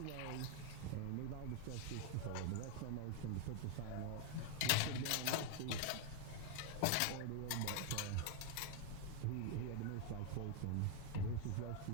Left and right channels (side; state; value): both; different; correlation 0.01